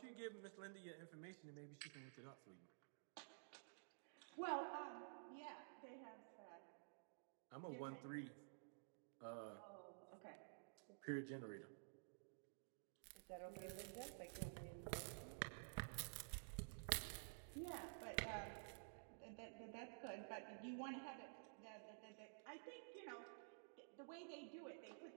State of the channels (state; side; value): silent; left; digital silence